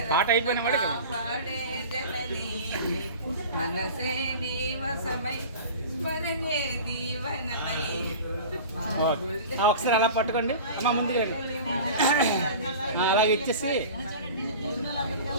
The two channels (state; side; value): inverted; both; correlation -0.37